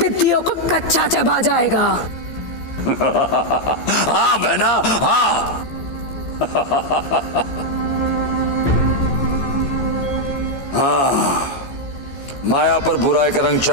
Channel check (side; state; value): right; late; 15 ms